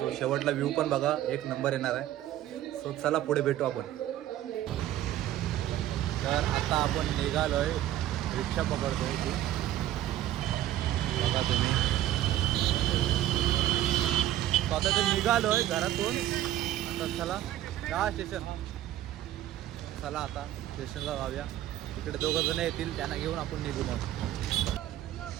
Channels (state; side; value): quieter; left; 13.1 dB